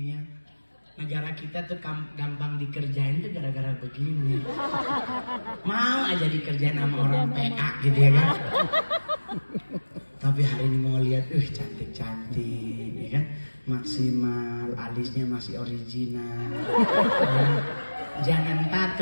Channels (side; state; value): both; inverted; correlation -1.00